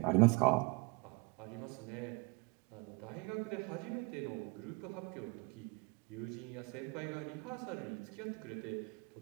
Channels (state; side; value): quieter; left; 28.3 dB